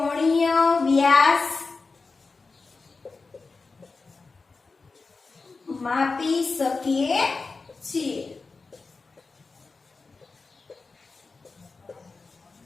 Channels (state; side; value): quieter; right; 4.1 dB